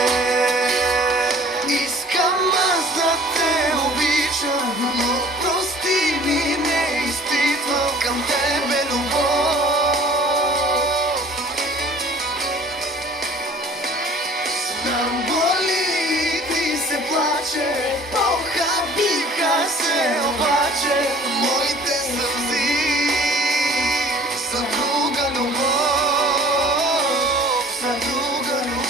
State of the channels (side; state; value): both; normal; correlation 0.50